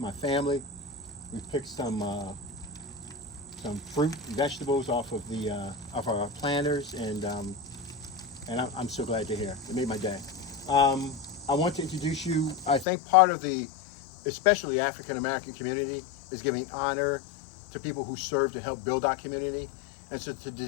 family. We picked some fruit, vegetables off of the off our planters, and I'm so glad to hear. It made my day. I want to introduce you. I think part of the, especially African American community, is giving honor to people who serve to help build our community. And so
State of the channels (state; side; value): drops out; right; at 12.9 s